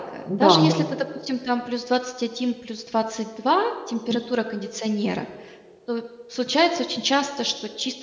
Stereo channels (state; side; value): identical; both; correlation 1.00